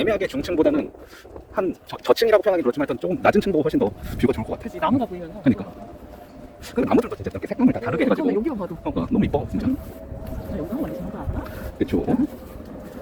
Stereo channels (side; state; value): both; identical; correlation 1.00